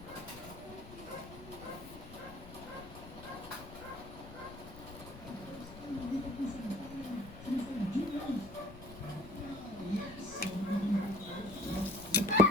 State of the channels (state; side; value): noise; left; rumble, 15 dB below the sound